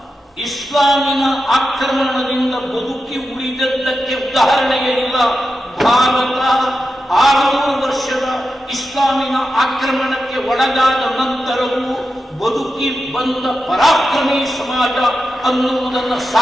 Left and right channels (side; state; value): both; normal; correlation 0.90